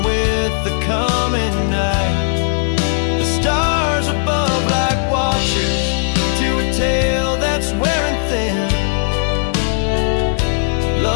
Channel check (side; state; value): right; silent; digital silence